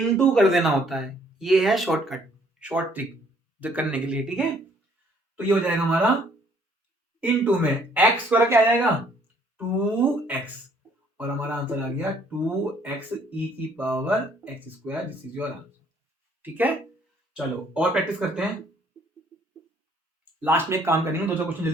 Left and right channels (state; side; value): normal; both; correlation 0.63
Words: कर देना होता है। ये है शॉर्टकट, शॉर्ट ट्रिक जो करने के लिए, ठीक है। तो ये हो जाएगा हमारा इनटू में x स्क्वायर क्या आ जाएगा 2x, और हमारा आंसर आ गया 2x e की power x square. This is your answer, ठीक है। चलो और प्रैक्टिस करते हैं, लास्ट में एक काम करेंगे, 2 क्वेश्चन